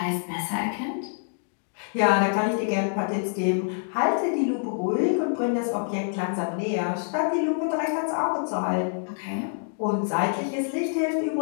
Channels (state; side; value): silent; right; digital silence